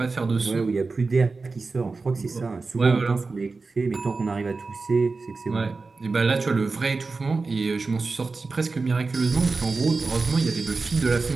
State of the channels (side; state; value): left; quieter; 4.0 dB